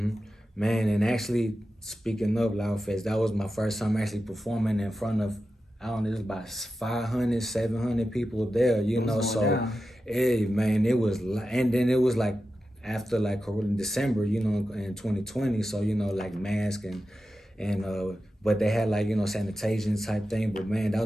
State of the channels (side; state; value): both; normal; correlation 0.92